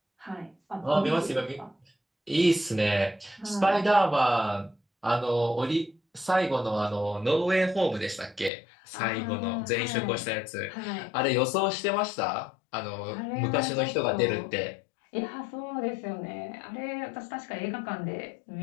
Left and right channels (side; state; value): right; drops out; at 8.5 s